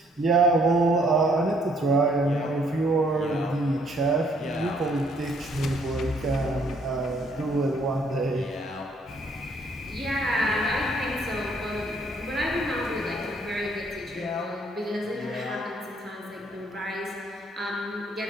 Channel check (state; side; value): normal; both; correlation 0.66